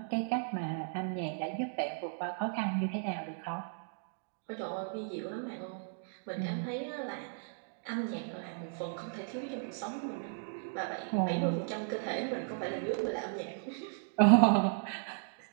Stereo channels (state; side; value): silent; left; digital silence